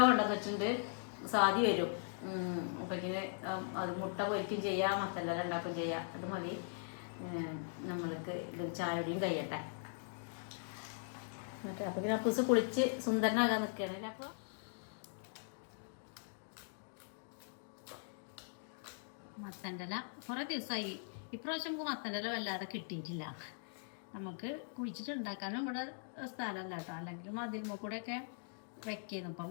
കൊണ്ടുവന്ന് വെച്ചിട്ടുണ്ട്. സാധി വരും. അപ്പൊ ഇങ്ങനെ അത് മുട്ട പൊരിക്കും ചെയ്യാം, മത്തലെല്ലാം ഉണ്ടാക്കും ചെയ്യാം. അത് മതി. നമ്മൾക്ക് ഇത് ചായയുടെയും കഴിയട്ടെ. മറ്റേ അപ്പൊ പിന്നെ അപ്പൂസ് കുളിച്ച് സുന്ദരനാകാൻ നിൽക്കുകയാണ്. അപ്പൊ മത്തൻ്റെല കുറെ ദിവസമായി. ഇപ്രാവശ്യം നമുക്ക് മത്തൻ്റെല വല്ലാതെ കിട്ടിയിട്ടില്ല. നമുക്ക് കുഴിച്ചിട്ട് ഉണ്ടാക്കാനും ഇവിടെ സ്ഥലമല്ല കേട്ടോ. അല്ലെങ്കിൽ മതിൽമ കൂടെ ഒക്കെ വെക്കുന്നു. ഇപ്പൊ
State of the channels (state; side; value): silent; right; digital silence